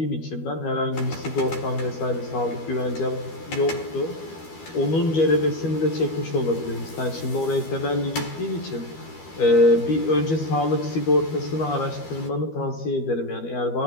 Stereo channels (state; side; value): late; right; 12 ms